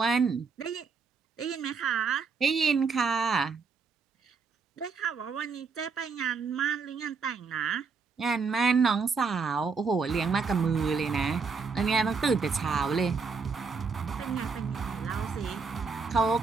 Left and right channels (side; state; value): left; quieter; 5.0 dB